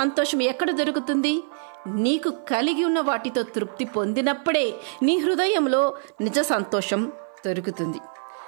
ఎక్కడ దొరుకుతుంది? నీకు కలిగి ఉన్న వాటితో తృప్తి పొందినప్పుడే నీ హృదయంలో నిజ సంతోషం దొరుకుతుంది.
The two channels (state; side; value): silent; left; 55 dB below the other